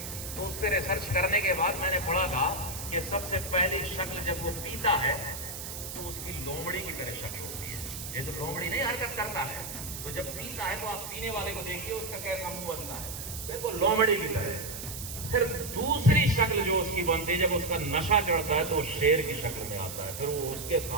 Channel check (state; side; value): noise; right; hiss, 8 dB below the sound